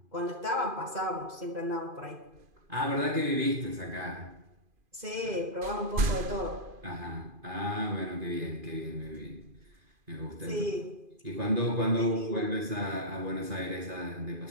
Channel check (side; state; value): left; late; 2.5 ms